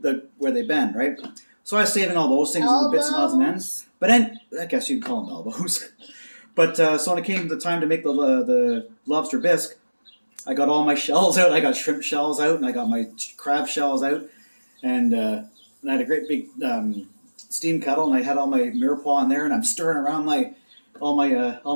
they bend, right? So I was saving all those things, little bits and odds and ends. But then I guess you'd call them elbows. But so when it came to the time to make the lobster bisque, I got all my shells out. I got shrimp shells out, and I got my crab shells out, and I had a great big steam kettle, and I had all my mirepoix in there, and I'm stirring around all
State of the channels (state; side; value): inverted; both; correlation -1.00